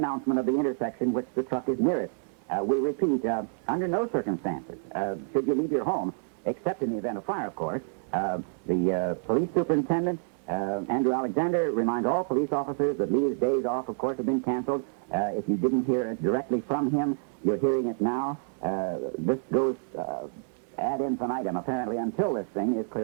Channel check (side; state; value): left; silent; digital silence